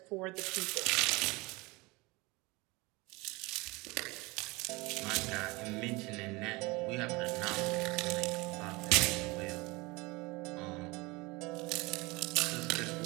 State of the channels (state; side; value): quieter; left; 24.3 dB